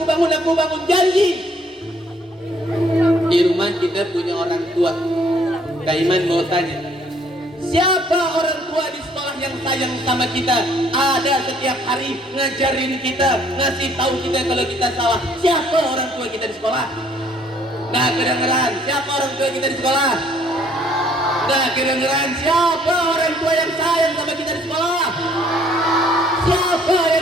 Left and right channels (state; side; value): normal; both; correlation 0.62